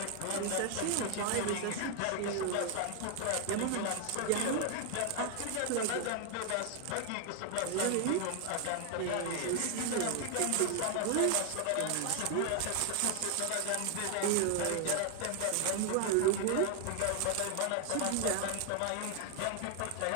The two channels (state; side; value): different; both; correlation 0.00